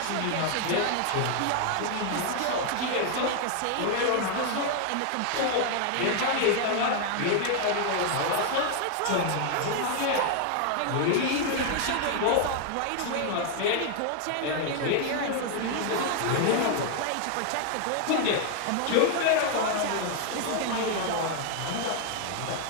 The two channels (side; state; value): both; different; correlation 0.00